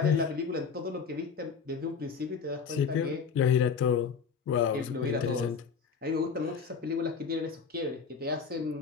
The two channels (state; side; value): quieter; right; 5.9 dB